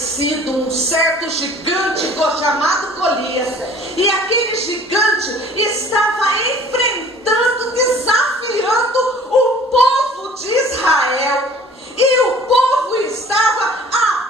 um certo gigante chamado Golias. E aquele gigante estava enfrentando, desafiando o povo de Israel. E o povo estava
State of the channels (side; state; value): both; normal; correlation 0.49